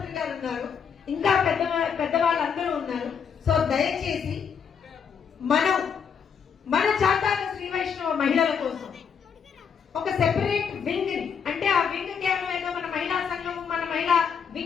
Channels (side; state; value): right; quieter; 6.9 dB